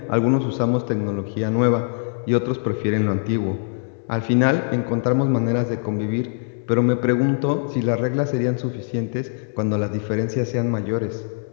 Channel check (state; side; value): silent; right; 64 dB below the other